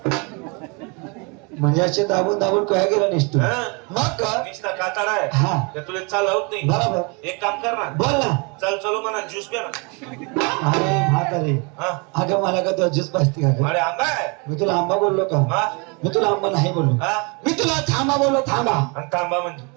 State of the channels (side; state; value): left; quieter; 31.7 dB